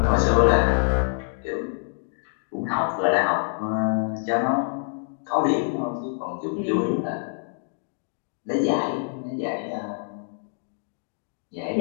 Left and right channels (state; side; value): silent; right; digital silence